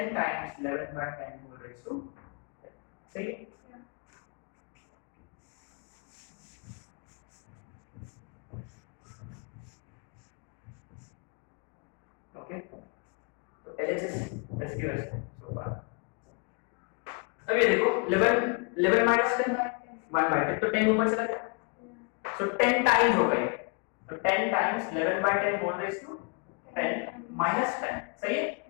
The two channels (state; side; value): quieter; right; 35.3 dB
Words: times 11/10 whole raise to 10, सही है। ओके, तो एलएचएस एसक्यूएस सो फार। अब ये देखो 11 माइनस 10 1/10, तो 10 ऊपर चला गया, सो 10 टाइम्स हो गए, तो 10 टाइम्स 11/10 होल रेज़ टू 10 -10 सही है